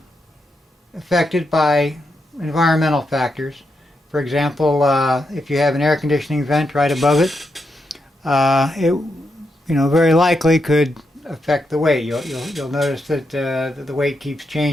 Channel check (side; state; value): both; normal; correlation 0.83